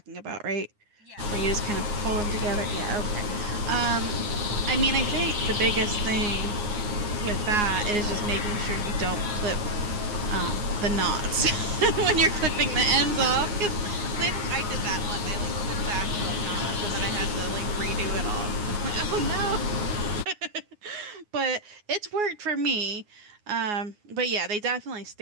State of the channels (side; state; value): left; late; 9.6 ms